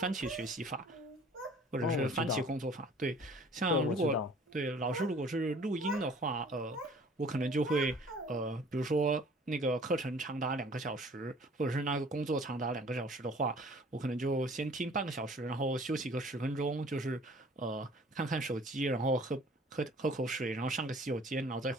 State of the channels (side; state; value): both; normal; correlation 0.51